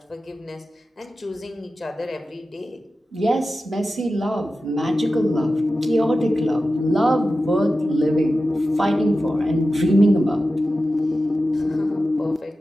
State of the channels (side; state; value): both; normal; correlation 0.93